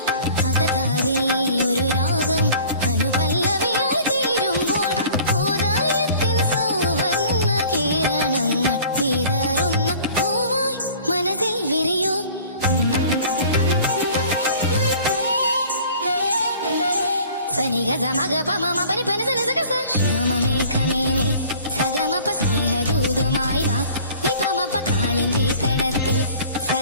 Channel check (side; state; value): both; inverted; correlation -0.48